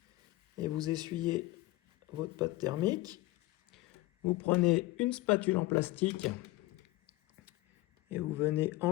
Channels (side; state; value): right; quieter; 19.1 dB